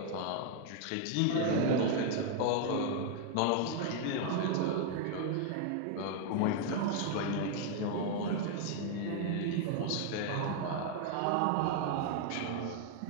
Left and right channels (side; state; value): both; different; correlation 0.00